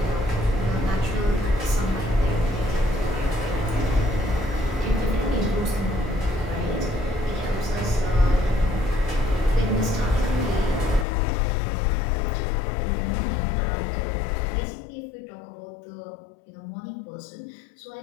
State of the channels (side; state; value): right; drops out; at 11.1 s